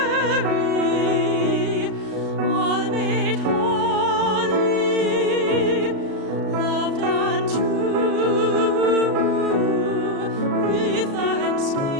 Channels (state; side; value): late; left; 36 ms